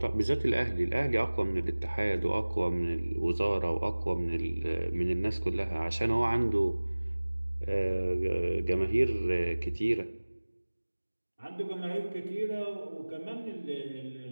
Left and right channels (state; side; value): inverted; both; correlation -1.00